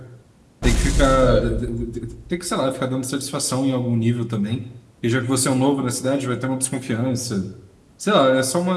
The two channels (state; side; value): identical; both; correlation 1.00